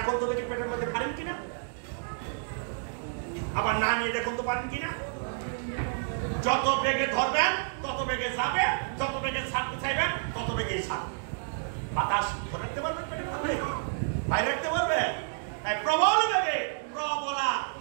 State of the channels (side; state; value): left; silent; digital silence